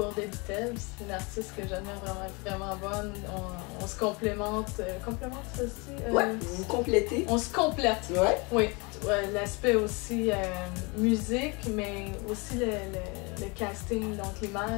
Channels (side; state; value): right; quieter; 29.0 dB